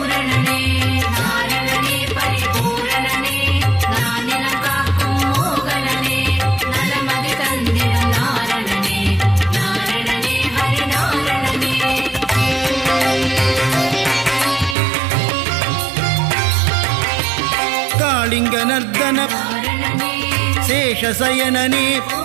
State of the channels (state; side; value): drops out; left; at 14.8 s